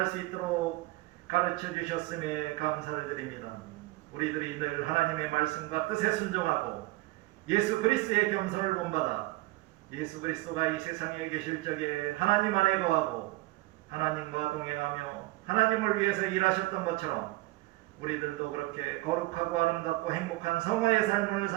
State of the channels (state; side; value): quieter; left; 20.6 dB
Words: 수 있도록 가르쳐 주셨음에 감사를 드립니다. 우리들이 늘 하나님의 말씀과 뜻에 순종하고 예수 그리스도의 겸손을 본받아 예수 그리스도가 이 세상에 계실 적에 하나님 안에 거하고 하나님과 동행하며 하나님을 위해서 일하셨던 것처럼 우리들도 그렇게 거룩하고 아름답고 행복한 성화의 삶을